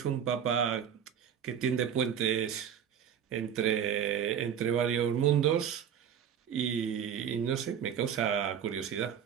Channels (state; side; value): quieter; left; 8.6 dB